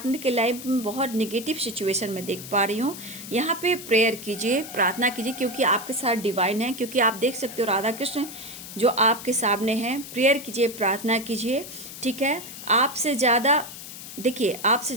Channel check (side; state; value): left; noise; hiss, 12 dB below the sound